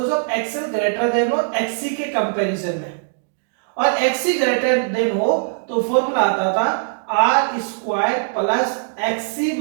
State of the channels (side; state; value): left; silent; digital silence